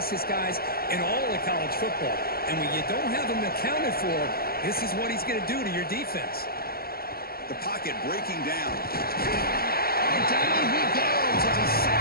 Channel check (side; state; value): right; late; 0.44 ms